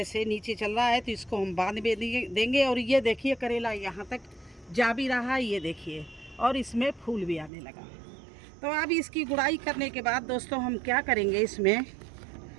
से नीचे चल रहा है तो इसको हम बांध में देंगे। और ये देखिए करेला यहाँ तक जा भी रहा है, ये देखिए, और इसमें फूल भी आने लगा। तो अब इसकी गुड़ाई करने के बाद दोस्तों हम क्या करेंगे, इसमें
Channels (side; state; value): left; drops out; at 7.5 s